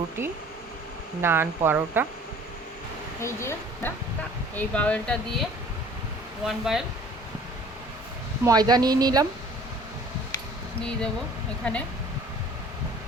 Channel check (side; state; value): both; normal; correlation 0.50